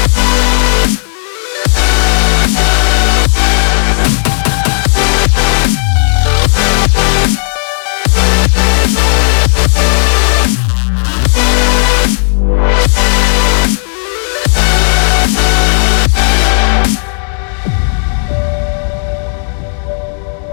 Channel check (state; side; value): silent; right; digital silence